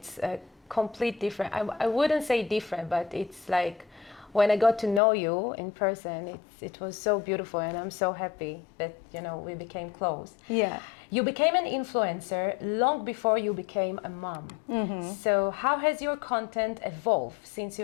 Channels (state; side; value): drops out; right; at 5.0 s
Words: a complete different, I wouldn't say different, but it's like, when I got to know you in person, it was so beautiful, and I'm so happy that, we became close. Yeah. You became an influencer long before you became a mom. Mm-hmm. So how has your content evolved since